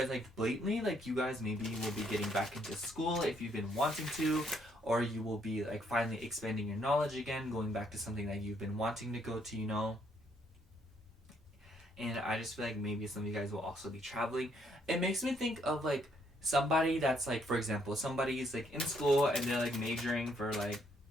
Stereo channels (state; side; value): normal; both; correlation 0.70